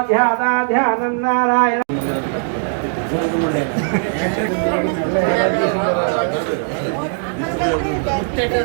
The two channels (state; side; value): silent; left; 59 dB below the other